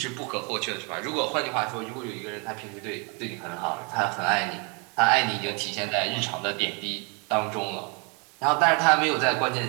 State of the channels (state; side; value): quieter; left; 32.9 dB